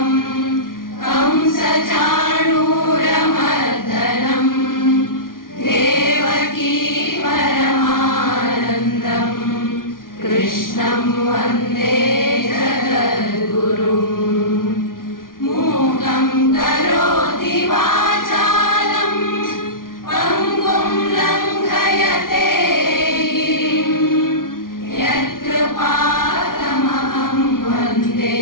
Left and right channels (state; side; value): late; right; 0.91 ms